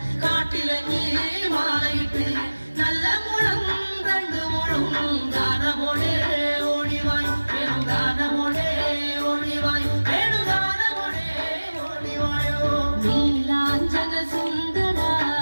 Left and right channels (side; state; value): both; inverted; correlation -1.00